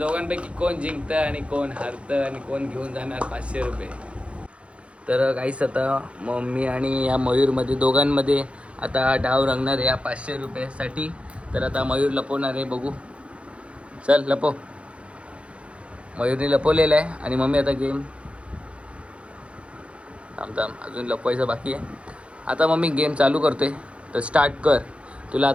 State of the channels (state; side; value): late; left; 0.060 ms